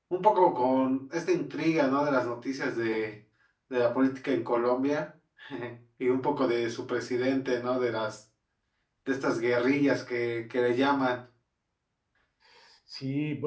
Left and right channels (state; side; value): identical; both; correlation 1.00